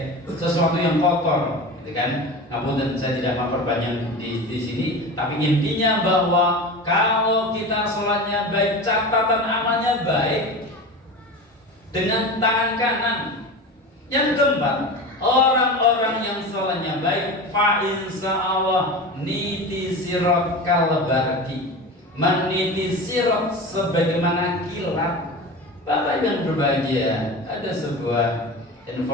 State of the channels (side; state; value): both; normal; correlation 0.29